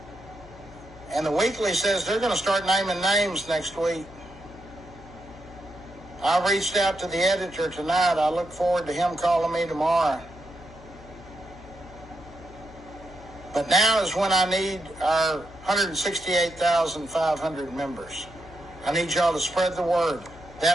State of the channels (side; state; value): left; noise; hum, 20 dB below the sound